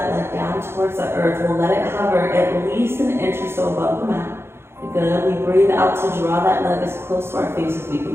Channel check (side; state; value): left; late; 0.12 ms